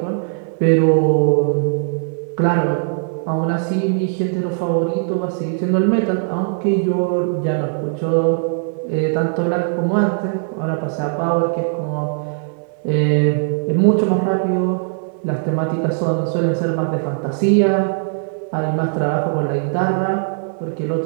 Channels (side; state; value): left; silent; 66 dB below the other